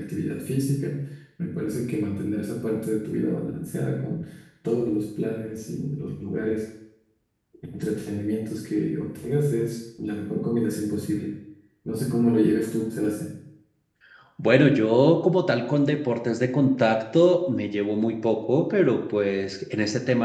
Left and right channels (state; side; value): identical; both; correlation 1.00